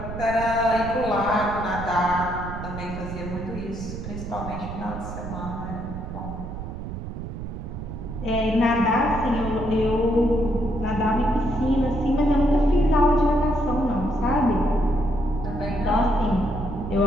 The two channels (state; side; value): noise; right; rumble, 8 dB below the sound